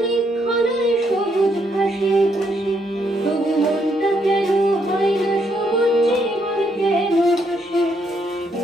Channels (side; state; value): both; normal; correlation 0.74